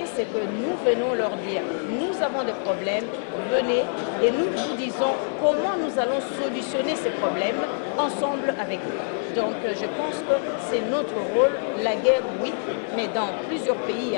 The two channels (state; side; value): silent; right; digital silence